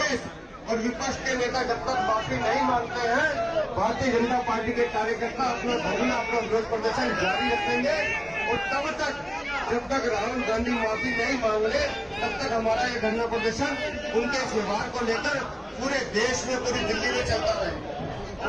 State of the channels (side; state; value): both; identical; correlation 1.00